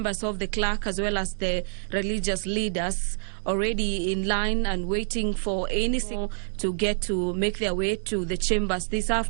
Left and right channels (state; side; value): silent; left; digital silence